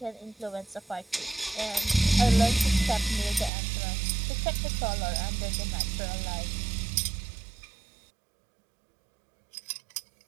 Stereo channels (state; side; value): drops out; left; at 3.5 s